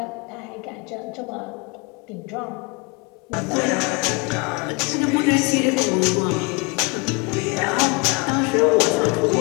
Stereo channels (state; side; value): quieter; right; 30.2 dB